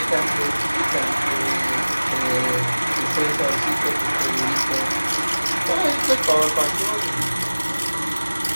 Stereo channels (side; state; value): both; inverted; correlation -1.00